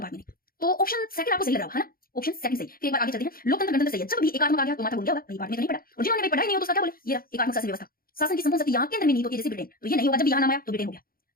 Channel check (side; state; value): right; late; 0.42 ms